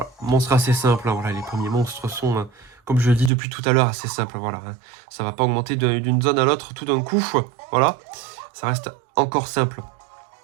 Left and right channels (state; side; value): drops out; left; at 3.3 s